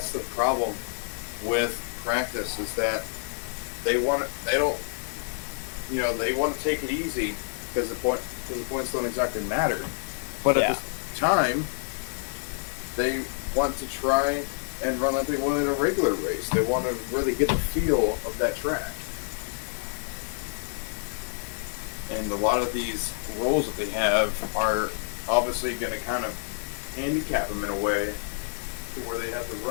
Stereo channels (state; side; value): silent; right; digital silence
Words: the problem with practice, is that they want to take it easy because the points don't exactly matter. But at the time, they want to try and run like they would in a regular race. They want to really get the feel of that track. And a lot of these roles that they have are obviously going to kind of handicap them in a way to where they have to